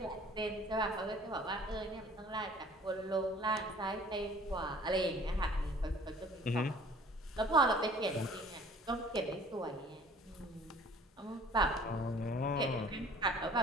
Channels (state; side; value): normal; both; correlation 0.51